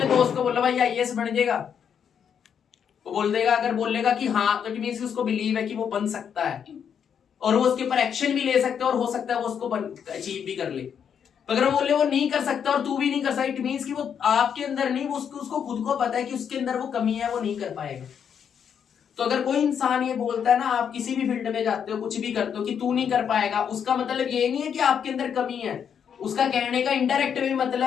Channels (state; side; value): quieter; right; 7.8 dB